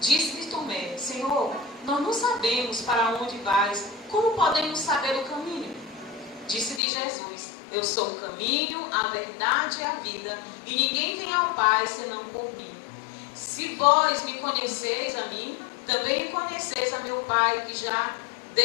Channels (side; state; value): right; drops out; at 6.8 s